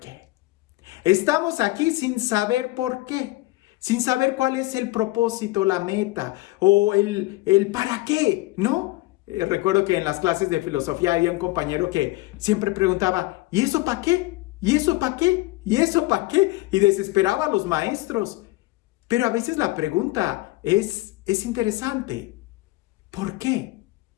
Estamos aquí sin saber por qué, sin saber cuál es el propósito, la meta o el para qué, ¿no? Recuerdo que en las clases de filosofía había un compañero que siempre preguntaba, ¿y eso para qué? ¿Y eso para qué? ¿Y eso para qué? Y desesperaba a los maestros. Pero a veces la pregunta es interesante. ¿Por qué?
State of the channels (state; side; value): quieter; right; 19.8 dB